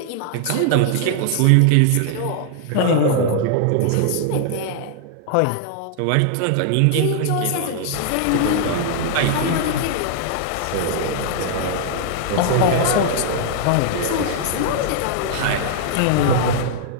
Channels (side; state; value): both; different; correlation -0.01